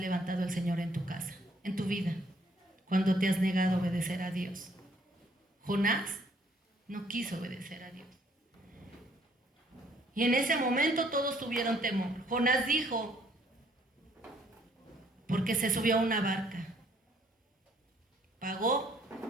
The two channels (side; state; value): both; normal; correlation 0.64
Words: el Señor en tu casa, en tu vida, cuando te has negado a obedecer a Dios? Jonás no quiso obedecer a Dios. Y en ese momento todos tuvieron temor. Jonás dijo, porque se subió a una barca, pagó